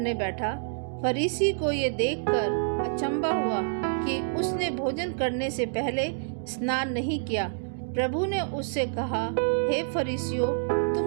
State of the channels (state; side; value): silent; left; digital silence